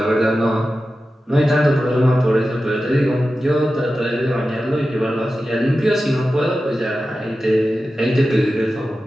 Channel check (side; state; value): both; normal; correlation 0.93